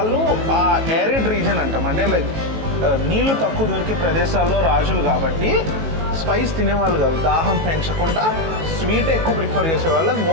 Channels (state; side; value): late; left; 18 ms